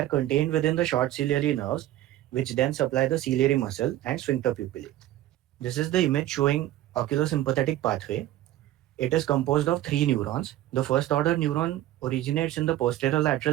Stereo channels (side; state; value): left; quieter; 14.1 dB